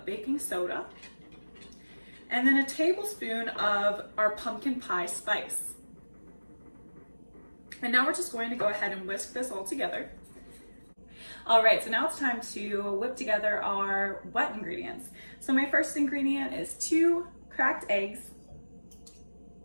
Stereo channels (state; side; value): inverted; both; correlation -1.00